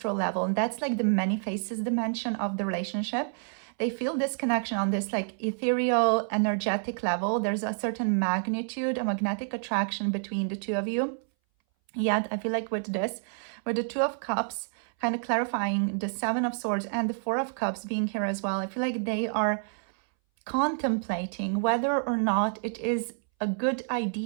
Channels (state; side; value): silent; left; 59 dB below the other